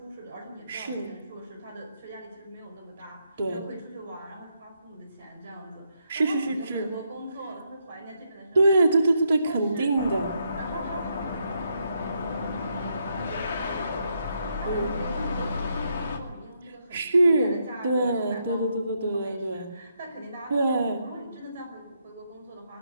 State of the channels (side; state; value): both; inverted; correlation -0.78